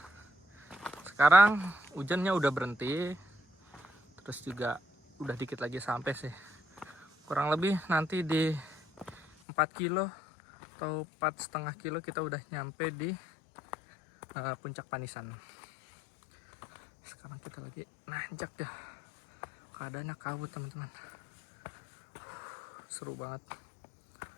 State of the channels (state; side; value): drops out; right; at 9.2 s